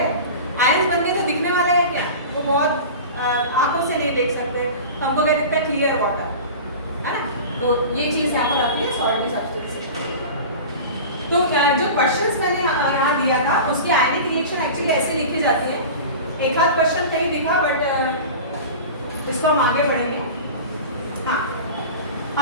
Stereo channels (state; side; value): inverted; both; correlation -0.33